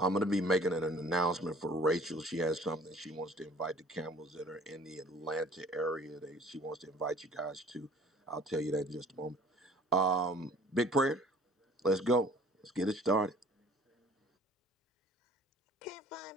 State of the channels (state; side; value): normal; both; correlation 0.51